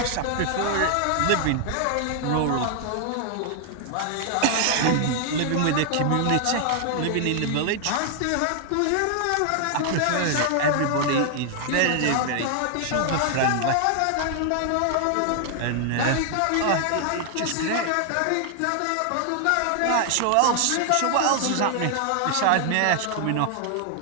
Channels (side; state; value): both; different; correlation 0.00